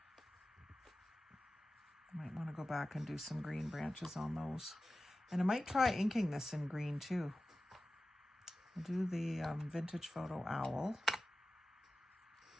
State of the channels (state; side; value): normal; both; correlation 0.95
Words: I might want to go back and do some green branches on those. And I might try inking this in green too. I'll do the vintage photo owl.